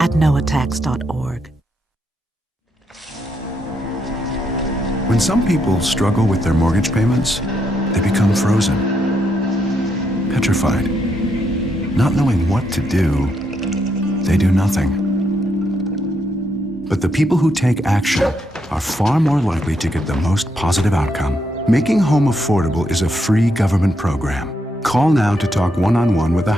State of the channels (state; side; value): normal; both; correlation 0.78